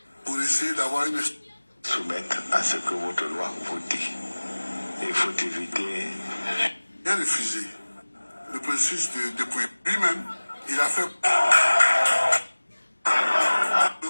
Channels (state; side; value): inverted; both; correlation -1.00